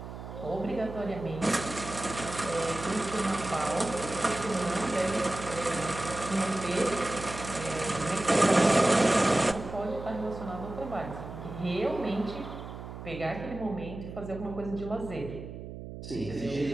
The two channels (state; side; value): noise; right; hum, 10 dB below the sound